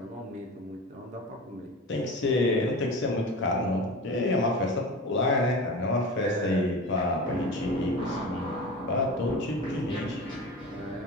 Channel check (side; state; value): both; normal; correlation 0.31